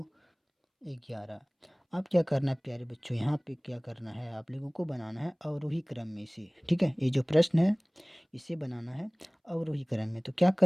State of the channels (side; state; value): both; identical; correlation 1.00